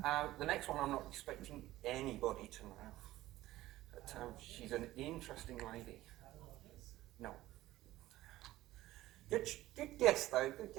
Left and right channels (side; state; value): left; quieter; 16.1 dB